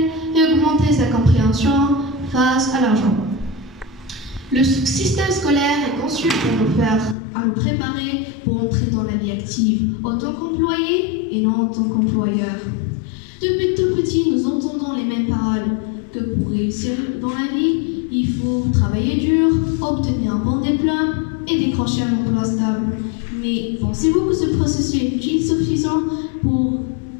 et augmenter sa compréhension face à l'argent. Le système scolaire est conçu pour nous préparer pour entrer dans la vie active en tant qu'employé et non en tant qu'employeur. Depuis tout petit, nous entendons les mêmes paroles que pour réussir dans la vie, il faut travailler dur, obtenir un bon diplôme et décrocher un emploi stable. Mais pensez-vous que ce processus est suffisant pour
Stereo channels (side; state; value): right; drops out; at 7.2 s